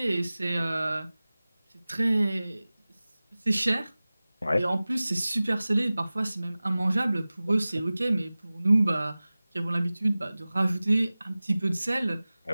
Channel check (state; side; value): inverted; both; correlation -0.98